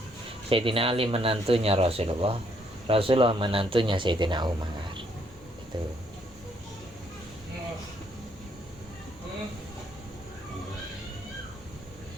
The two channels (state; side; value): normal; both; correlation 0.70